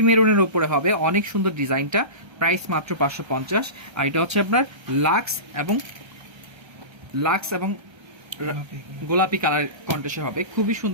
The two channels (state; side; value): late; left; 1.3 ms